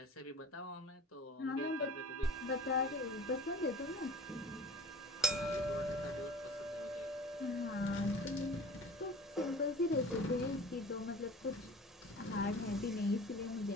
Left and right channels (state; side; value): normal; both; correlation 0.43